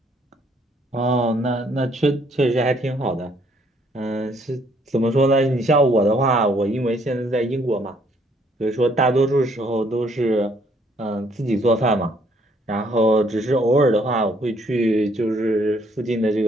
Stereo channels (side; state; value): both; normal; correlation 0.66